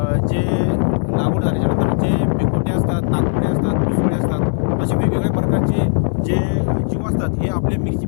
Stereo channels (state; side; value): silent; right; digital silence